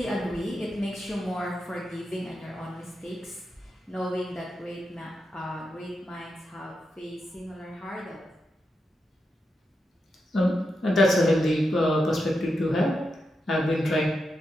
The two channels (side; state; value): both; normal; correlation 0.86